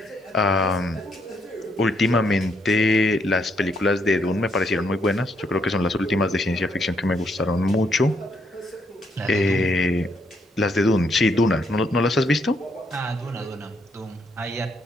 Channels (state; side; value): normal; both; correlation 0.74